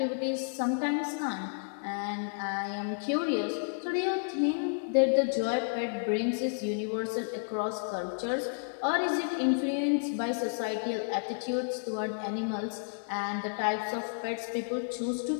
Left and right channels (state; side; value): silent; right; digital silence